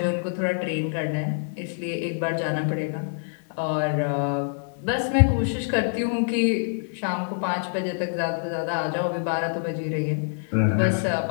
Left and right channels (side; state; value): right; silent; digital silence